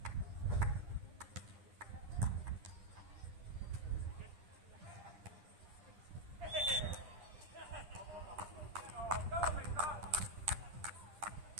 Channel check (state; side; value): late; left; 10 ms